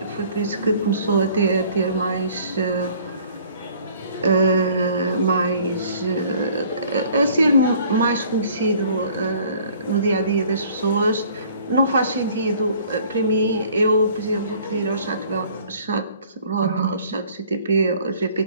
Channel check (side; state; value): both; inverted; correlation -0.55